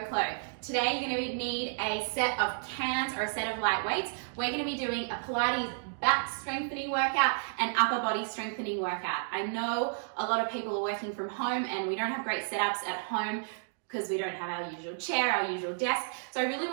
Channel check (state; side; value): silent; left; digital silence